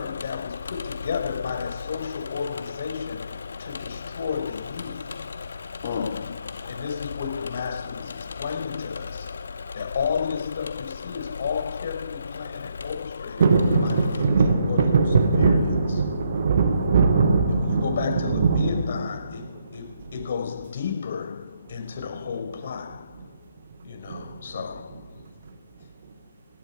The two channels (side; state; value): both; inverted; correlation -0.74